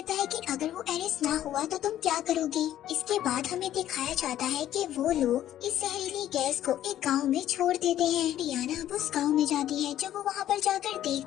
है कि अगर वो एरिस ना हुआ तो तुम क्या करोगी। इसके बाद हमें दिखाया जाता है कि वो लोग इस जहरीली गैस को एक गाँव में छोड़ देते हैं। डियाना अब उस गाँव में जाती है। जब वो वहाँ पर जाकर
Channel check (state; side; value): quieter; right; 12.2 dB